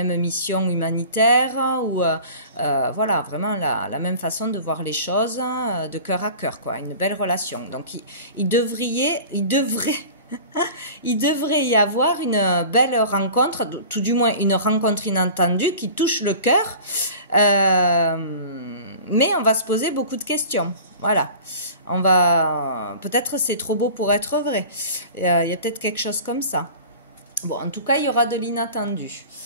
mission humanitaire ou voilà, vraiment la même façon de voir les choses de cœur à cœur, quoi, une belle relation. Donc il devrait y avoir une belle rencontre, tout du moins une rencontre inattendue qui touche le cœur. Mais on va se poser beaucoup de questions. Voilà. Peut-être c'est trop beau pour être vrai. Il y a peut-être quelque chose comme ça. Bon, en tout cas, il y aura de l'inattendu.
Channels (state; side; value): inverted; both; correlation -0.41